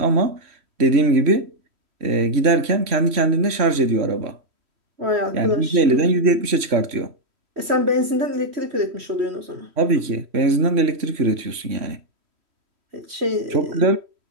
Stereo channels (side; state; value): left; late; 3.1 ms